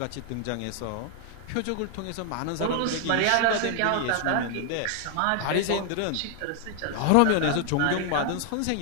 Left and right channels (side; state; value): both; different; correlation 0.00